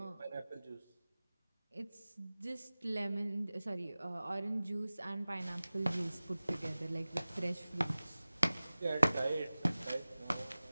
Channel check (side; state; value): both; inverted; correlation -0.98